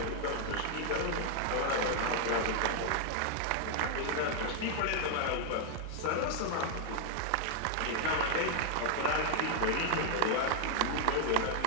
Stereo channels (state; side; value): different; both; correlation 0.00